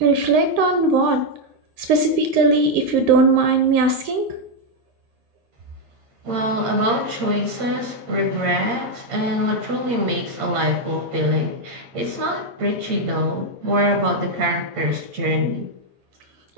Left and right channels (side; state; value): left; late; 8.7 ms